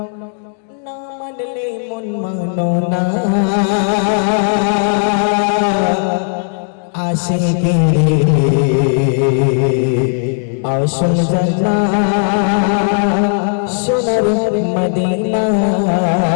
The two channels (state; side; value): silent; right; digital silence